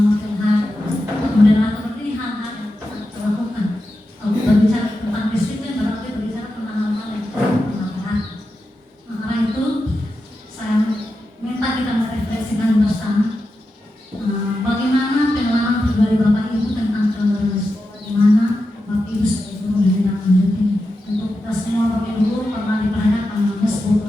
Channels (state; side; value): normal; both; correlation 0.90